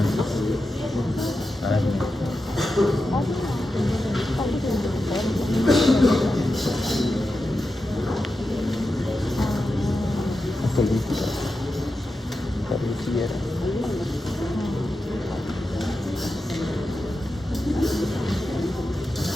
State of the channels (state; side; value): normal; both; correlation 0.90